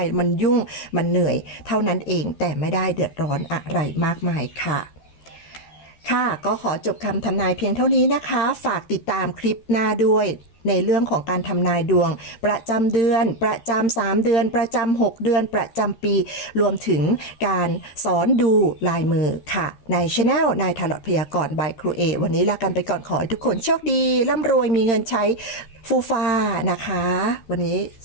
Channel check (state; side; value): late; right; 13 ms